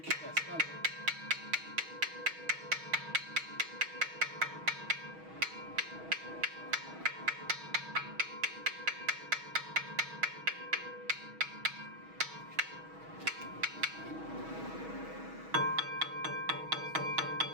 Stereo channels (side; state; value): left; late; 6.3 ms